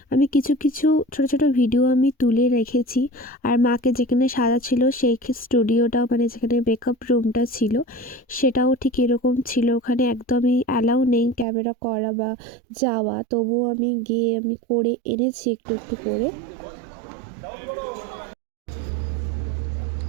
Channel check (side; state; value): left; drops out; at 11.5 s